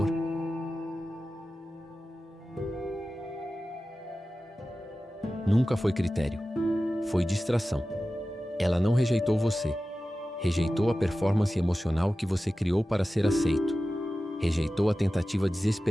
nunca foi critério. Foi distração. Ela não rejeitou você. Rejeitou a performance emocional que você criou para ser aceito. Rejeitou a tentativa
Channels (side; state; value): both; normal; correlation 0.95